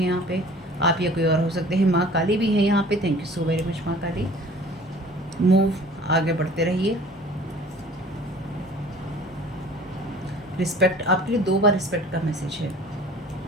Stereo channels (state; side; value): normal; both; correlation 0.47